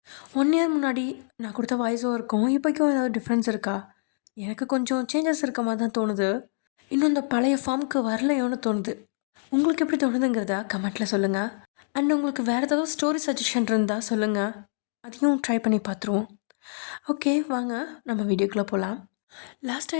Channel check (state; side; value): silent; right; digital silence